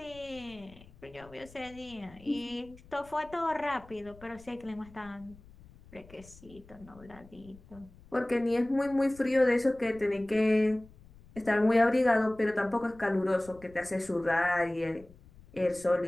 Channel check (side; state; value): left; noise; rumble, 23 dB below the sound